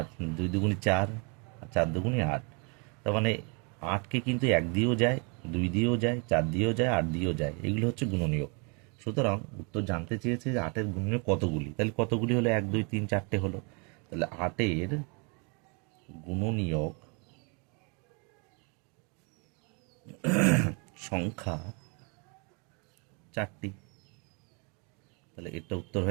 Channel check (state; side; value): quieter; left; 34.1 dB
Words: 2 দুগুণি 4, আর 4 দুগুণি 8। তার মানে 8কে কিন্তু 1 দিয়েও যায়, 2 দিয়েও যায়, 4 দিয়েও যায়, 8 দিয়েও যায়। এগুলো হচ্ছে গুণনীয়ক। সুতরাং উত্তর জানতে চেয়েছে যে 8-এর গুণনীয়ক কতগুলি। তাহলে কতগুলি হলো? 1 2 3 4টে হলো। তাহলে 8-এর গুণনীয়ক সংখ্যা 4টি। তাহলে এটা উত্তর